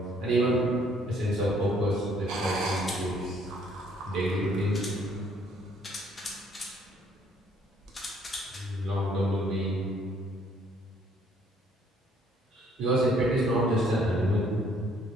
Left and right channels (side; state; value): both; normal; correlation 0.64